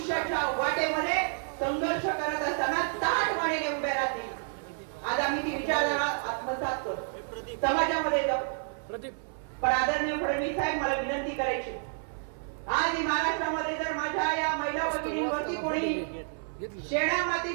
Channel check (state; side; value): silent; left; digital silence